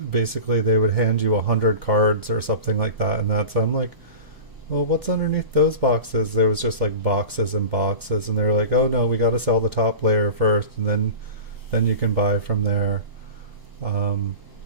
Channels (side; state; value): left; late; 1.0 ms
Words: basically they would hand you 100 cards or something like that, and I'm like, well, what's underneath those boxes? There was just like boxes and boxes, and they were like, oh no, we got to sell the top layer first, and then you can buy from there. Um,